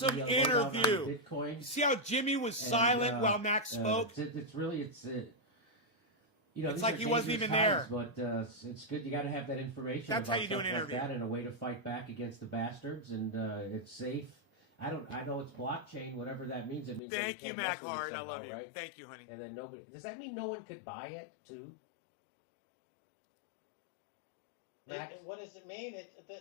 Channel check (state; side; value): drops out; right; at 17.0 s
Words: interview. Bitcoin. You see how Jimmy was silent while Max spoke? It's it's like he wasn't even there. But it's good. You got to have that information. That's about how you do an stuff interview. Like that, and a way to fight back against the bastards, and it's safe. I know it's blockchain, whatever that means. It means Thank that you, can't Mac mess with it Hard. I somehow, love you. right? Thank you, honey. And then nobody. Does that mean no one could buy it too? Max? What does it mean?